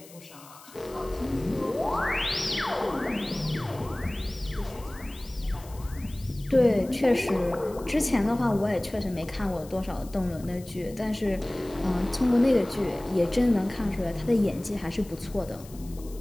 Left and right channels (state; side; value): noise; left; hiss, 21 dB below the sound